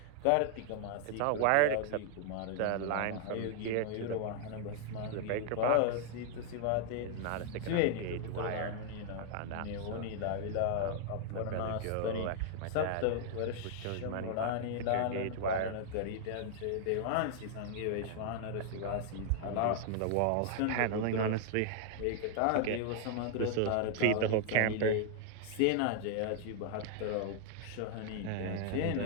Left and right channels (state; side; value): different; both; correlation 0.00